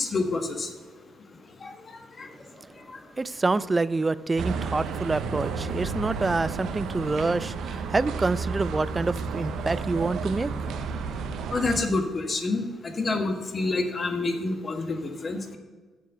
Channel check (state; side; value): normal; both; correlation 0.86